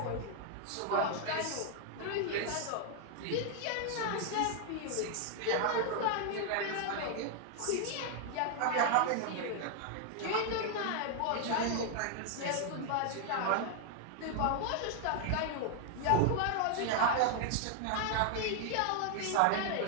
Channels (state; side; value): different; both; correlation 0.00